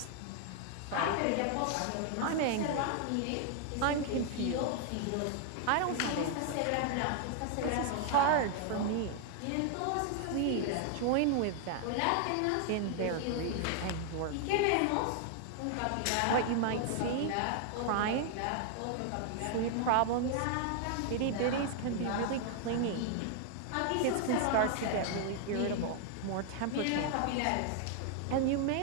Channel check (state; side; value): different; both; correlation 0.00